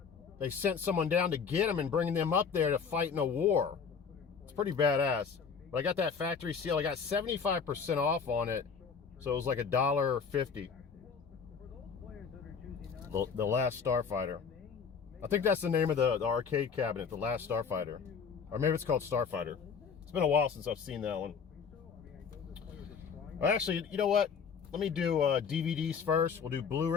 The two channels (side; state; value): right; quieter; 6.2 dB